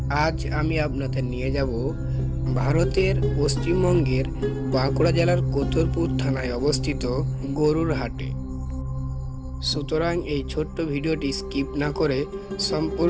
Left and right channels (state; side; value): identical; both; correlation 1.00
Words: আজ আমি আপনাদের নিয়ে যাব ভারতের পশ্চিমবঙ্গের বাঁকুড়া জেলার কোতরপুর থানায় অবস্থিত গরুর হাটে। সুতরাং এই ছোট্ট ভিডিওটি স্কিপ না করে